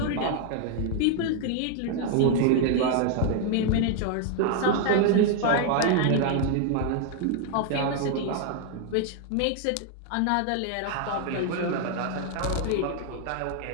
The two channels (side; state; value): both; different; correlation 0.00